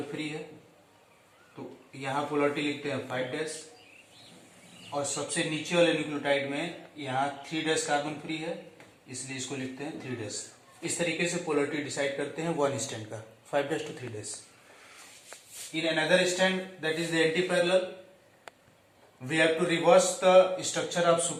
free है, तो यहाँ पोलरिटी लिखते हैं 5 डैश, और सबसे नीचे वाले न्यूक्लियोटाइड में यहाँ 3 डैश कार्बन फ्री है, इसलिए इसको लिखते हैं 3 डैश। इस तरीके से पोलरिटी डिसाइड करते हैं वन स्टैंड का, 5 dash two 3 dash. In another strand, that is the antiparallel, we have to reverse the structure of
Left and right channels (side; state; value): both; identical; correlation 1.00